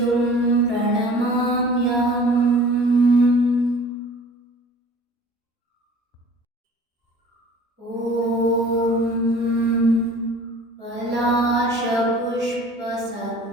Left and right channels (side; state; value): both; normal; correlation 0.47